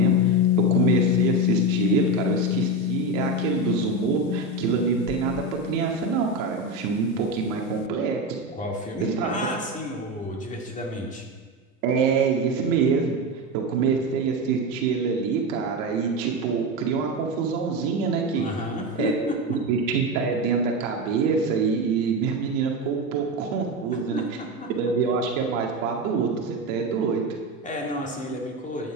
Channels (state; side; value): normal; both; correlation 0.17